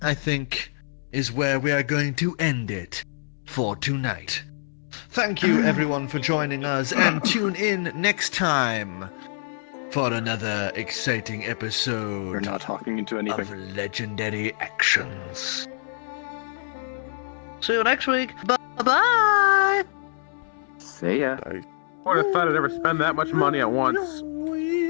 I think, is where we are going to end it for tonight. Thank you, everyone, for joining us, and tune in next time for another exciting episode You're not talking into anything. of Legendary Actions. See you next week. Bye-bye. See ya. I would have thought I'd ever spend that much money at once.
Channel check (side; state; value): right; silent; 62 dB below the other